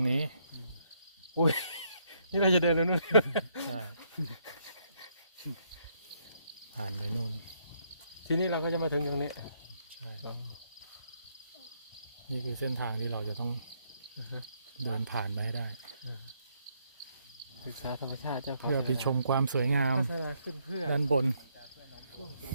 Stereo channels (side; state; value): both; inverted; correlation -0.73